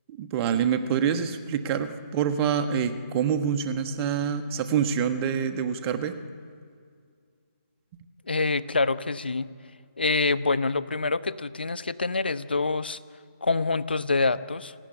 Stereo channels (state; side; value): inverted; both; correlation -0.51